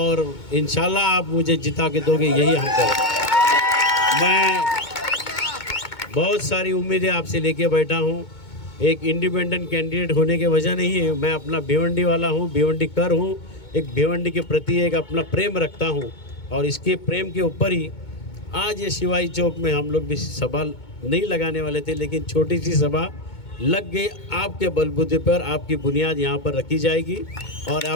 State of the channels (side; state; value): right; late; 2.2 ms